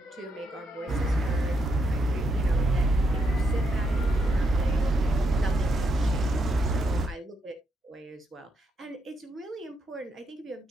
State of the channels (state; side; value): normal; both; correlation 0.79